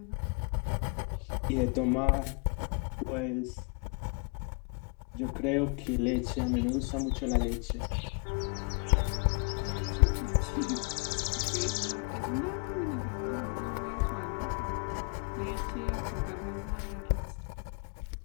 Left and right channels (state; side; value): quieter; right; 35.7 dB